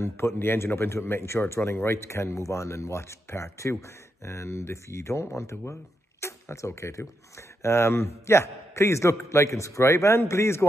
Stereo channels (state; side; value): normal; both; correlation 0.83